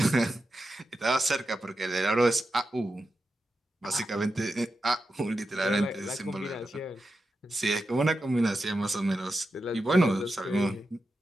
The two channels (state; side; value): normal; both; correlation 0.90